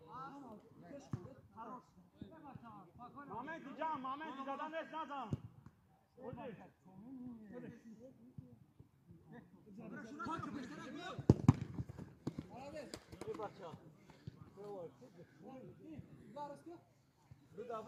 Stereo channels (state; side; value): identical; both; correlation 1.00